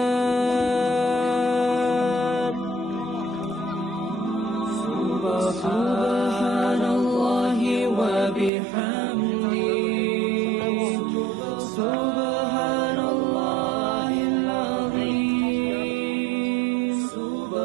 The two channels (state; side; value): drops out; left; at 8.5 s